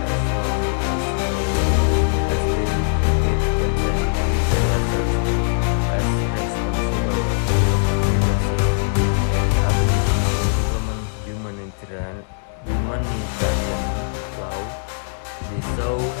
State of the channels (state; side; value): silent; right; digital silence